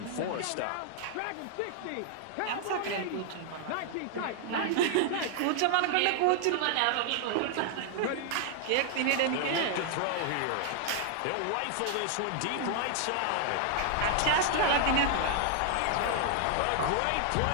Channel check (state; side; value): different; both; correlation 0.00